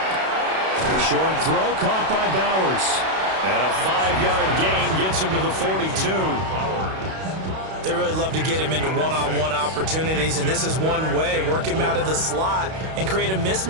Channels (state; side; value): late; left; 32 ms